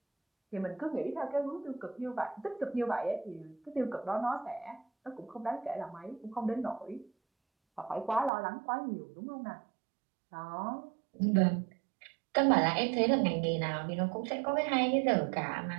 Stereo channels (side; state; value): left; drops out; at 8.3 s